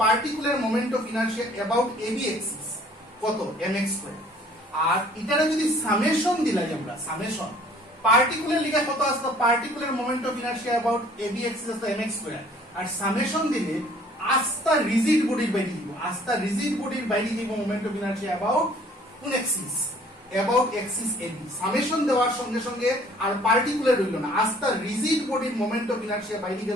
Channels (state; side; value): normal; both; correlation 0.55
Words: particular moment of inertia about AB axis কত, mx স্কয়ার। আর এটারে যদি সামেশন দিলাই আমরা, সামেশন পার্টিকুলার লিখা কত আসলো, particular moment of inertia about AB axis আসলো mx স্কয়ার, আর সামেশন দিলে আস্থা রিজিড বডির বাইরে দিব, আস্থা রিজিড বডির বাইরে দিব মোমেন্ট অফ ইনার্শিয়া অ্যাবাউট কোন axis, about axis AB. Summation দেওয়ার সঙ্গে সঙ্গে আর পার্টিকুলার রইল না, আস্থা রিজিড বডির মোমেন্ট অফ ইনার্শিয়া বাইরে